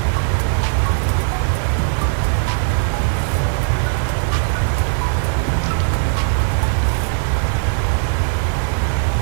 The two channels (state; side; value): silent; left; 65 dB below the other